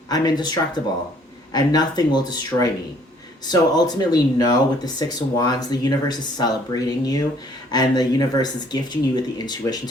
I'm indestructible, and nothing will destroy me. So ultimately, know with the Six of Wands, the universe is celebrating you, and the universe is gifting you with the intuition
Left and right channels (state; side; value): normal; both; correlation 0.60